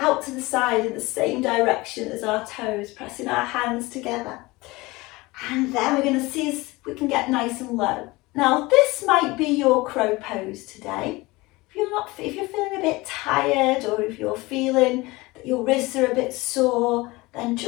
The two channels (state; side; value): quieter; right; 21.9 dB